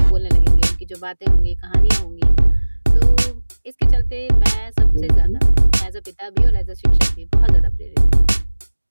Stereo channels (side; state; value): both; inverted; correlation -1.00